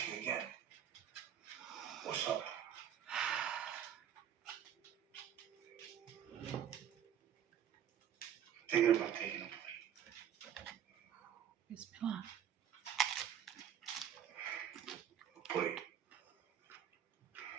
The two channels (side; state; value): left; quieter; 9.6 dB